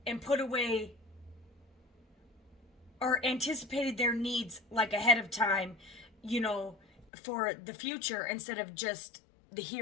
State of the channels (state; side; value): drops out; right; at 7.1 s